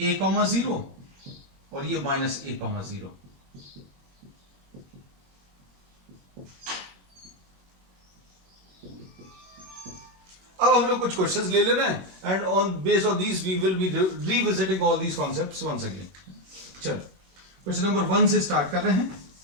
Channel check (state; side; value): late; left; 21 ms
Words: a,0 और ये -a,0। अब हम लोग कुछ क्वेश्चंस ले ले रहे हैं and on based on these we will be revisiting all these concepts once again. चलो क्वेश्चन नंबर 1 से स्टार्ट कर रहे हैं।